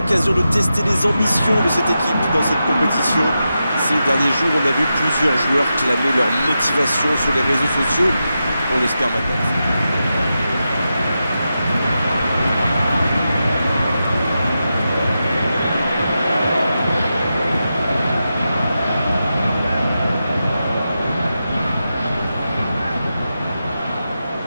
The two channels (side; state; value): both; inverted; correlation -0.89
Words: de tester les ambitions de cette équipe dans cette compétition. Ces derniers jours, on a vu plusieurs joueurs clamer leur motivation sur les réseaux sociaux. On espère maintenant.